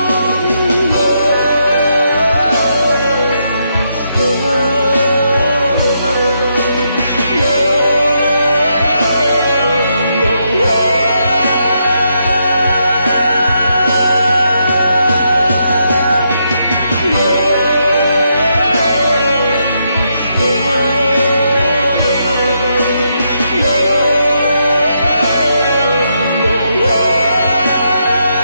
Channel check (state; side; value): inverted; both; correlation -0.80